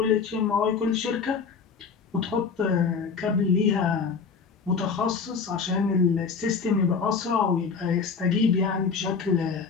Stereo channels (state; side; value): quieter; right; 5.5 dB